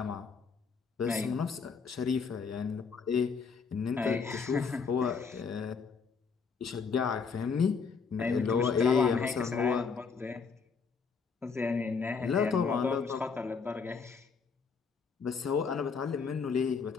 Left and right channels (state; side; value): quieter; right; 5.4 dB